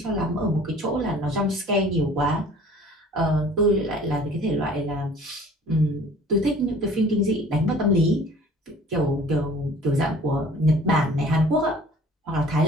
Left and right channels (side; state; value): both; normal; correlation 0.49